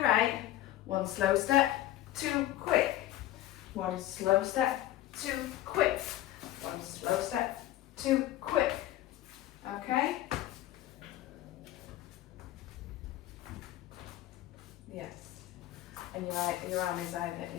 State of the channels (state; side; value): quieter; right; 14.2 dB